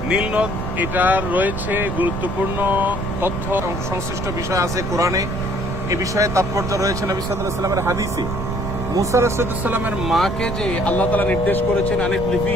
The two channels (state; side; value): noise; right; rumble, 5 dB below the sound